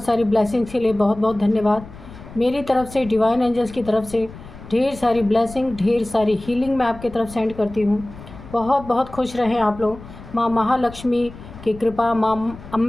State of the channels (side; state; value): left; noise; rumble, 16 dB below the sound